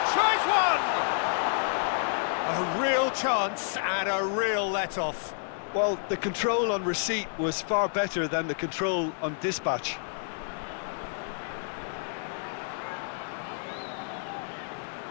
tries one! A real chance and a real let-off. Well, the control on receipt was far better than the control on dispatch.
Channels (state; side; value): silent; right; digital silence